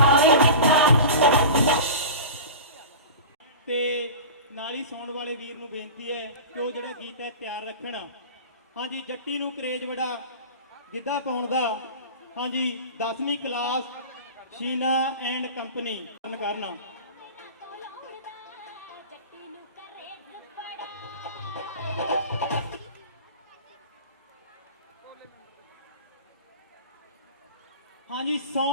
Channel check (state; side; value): inverted; both; correlation -0.33